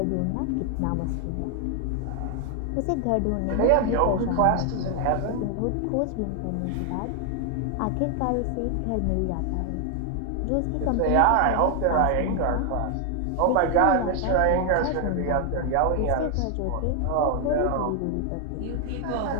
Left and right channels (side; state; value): both; different; correlation 0.00